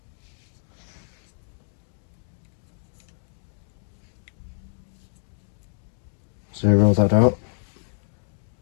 Zero that out.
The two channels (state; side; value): silent; right; digital silence